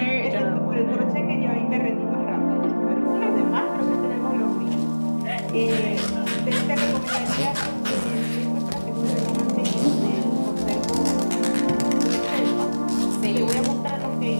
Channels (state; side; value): inverted; both; correlation -1.00